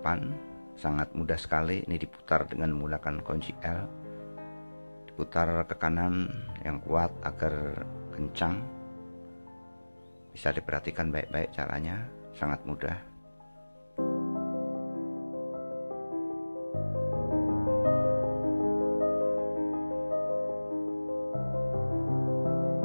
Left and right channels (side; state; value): both; inverted; correlation -1.00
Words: sangat mudah sekali. Ini diputar dengan menggunakan kunci L, diputar ke kanan yang kuat agar kencang. Bisa diperhatikan baik-baik caranya, sangat mudah.